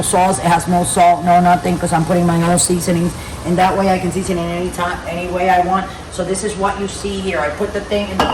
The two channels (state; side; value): identical; both; correlation 1.00